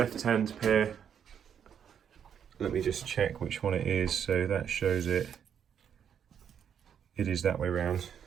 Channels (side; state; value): left; quieter; 8.3 dB